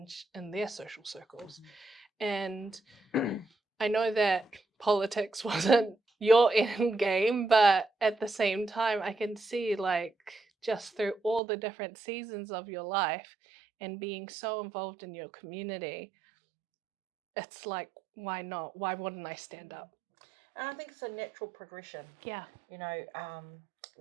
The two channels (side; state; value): left; drops out; at 11.4 s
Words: in their social circles. And I know that politics wasn't your end game, but at the same time, I can see, like, just through all the different seasons of your life and being so involved in your community, it's like, why not? Why wouldn't I stand up? And I think it's a natural progression. Yeah.